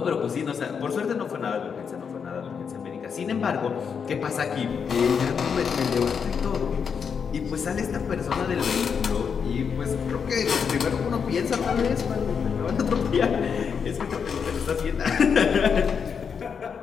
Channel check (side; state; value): right; quieter; 6.6 dB